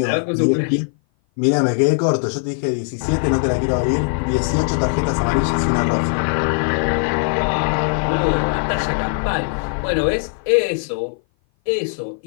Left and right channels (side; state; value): right; silent; 57 dB below the other